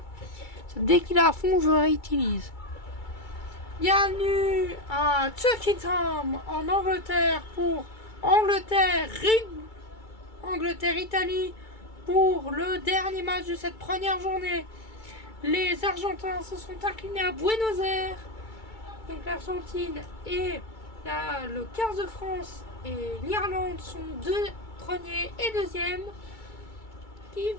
Dès qu'il est à fond, je le réutilise. Bienvenue à Tuckingham en Angleterre pour Angleterre-Italie pour le dernier match de cette première journée. Les Argentins se sont inclinés à Buenos Aires. Donc l'Argentine et le 15 de France et l'Irlande sont deux premiers et deuxièmes. Qui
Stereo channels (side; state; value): right; late; 2.3 ms